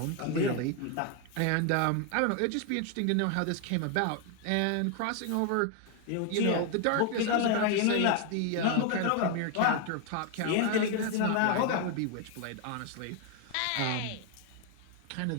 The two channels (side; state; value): both; different; correlation 0.01